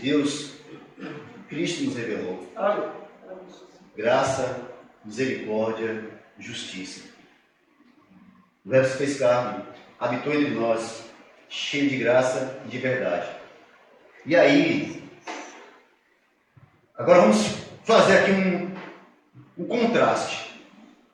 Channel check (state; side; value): identical; both; correlation 1.00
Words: Cristo nos revelou. Graça, misericórdia, justiça. O Verbo se fez carne, habitou entre nós, cheio de graça e de verdade. E aí, agora vamos fazer aqui um contraste.